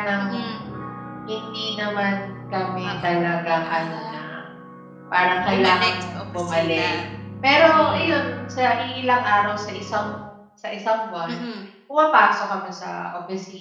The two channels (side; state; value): both; identical; correlation 1.00